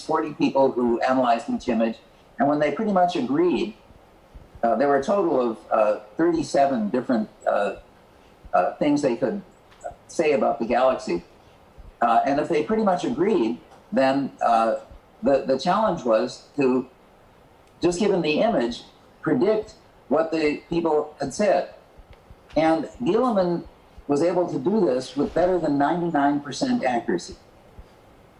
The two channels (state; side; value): identical; both; correlation 1.00